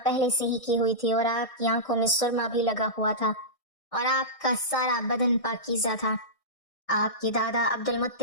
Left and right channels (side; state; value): right; late; 1.6 ms